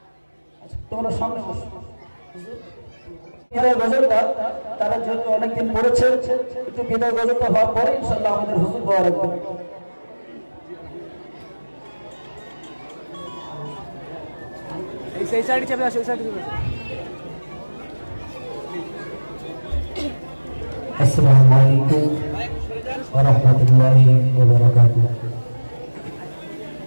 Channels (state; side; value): inverted; both; correlation -1.00